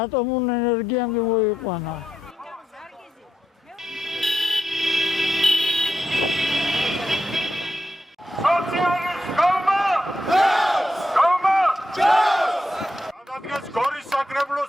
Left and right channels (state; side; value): normal; both; correlation 0.84